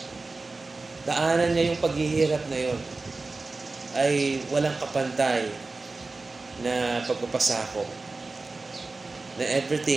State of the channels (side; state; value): left; quieter; 3.6 dB